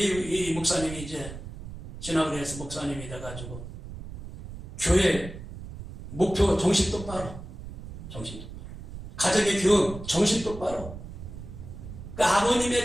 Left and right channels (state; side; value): noise; right; rumble, 11 dB below the sound